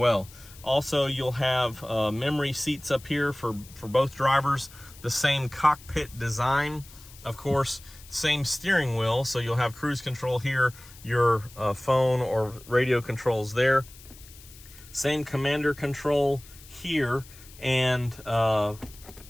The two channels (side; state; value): left; noise; hiss, 21 dB below the sound